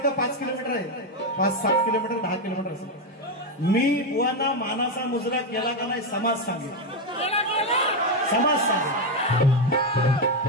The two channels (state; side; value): normal; both; correlation 0.07